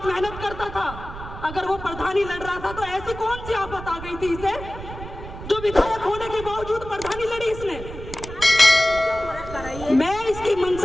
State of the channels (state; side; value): noise; right; rumble, 12 dB below the sound